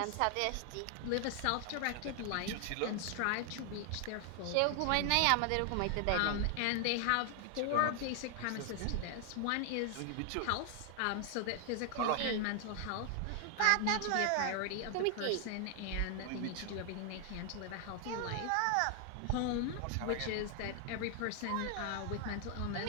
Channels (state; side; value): different; both; correlation 0.00